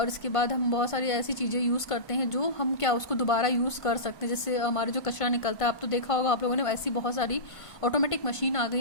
इसके बाद हम बहुत सारी ऐसी चीज़ें यूज़ करते हैं जो हम क्या उसको दोबारा यूज़ कर सकते हैं। जैसे हमारे जो कचरा निकलता है, आप तो देखा होगा आप लोगों ने, ऐसी बहुत सारी ऑटोमेटिक मशीन आ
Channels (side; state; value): right; late; 1.5 ms